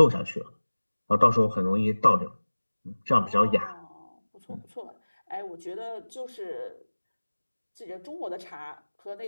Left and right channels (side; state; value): both; inverted; correlation -1.00